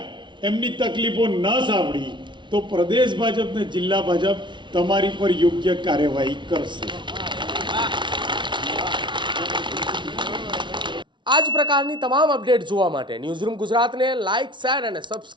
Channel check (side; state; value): left; late; 0.23 ms